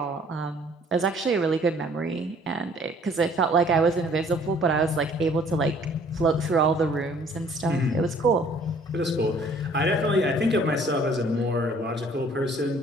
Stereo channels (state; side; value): normal; both; correlation 0.57